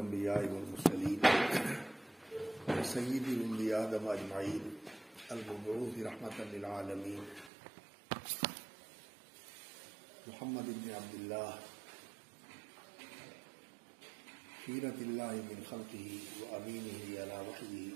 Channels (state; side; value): drops out; left; at 7.5 s